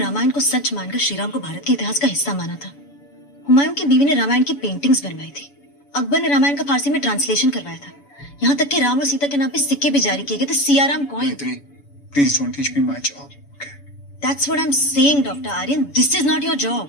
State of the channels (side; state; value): right; late; 7.0 ms